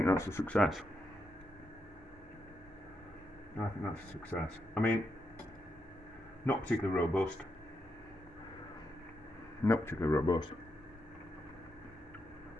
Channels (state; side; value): normal; both; correlation 0.83